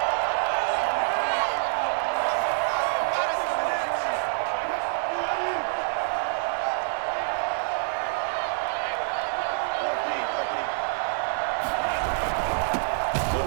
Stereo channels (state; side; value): silent; left; digital silence